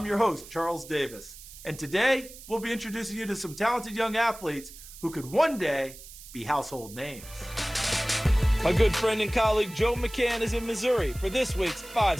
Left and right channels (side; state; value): right; noise; hiss, 17 dB below the sound